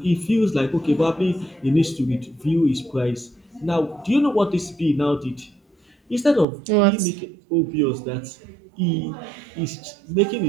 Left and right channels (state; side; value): drops out; left; at 6.5 s